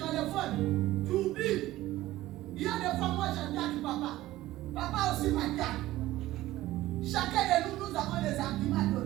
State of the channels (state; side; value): quieter; left; 16.0 dB